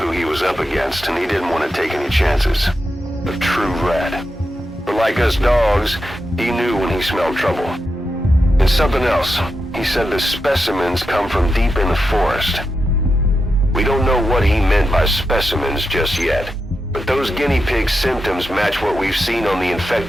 he was up against, and he didn't want to take any chances. A true rat. But like us dogs, he knew when he smelled trouble. And something else. He said the specimens come from deep in the forest. We don't know what he meant by specimens just yet, but those guinea pig symptoms match what we've seen on the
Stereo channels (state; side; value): normal; both; correlation 0.88